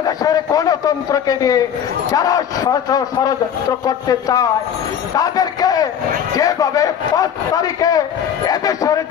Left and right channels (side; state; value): right; quieter; 8.7 dB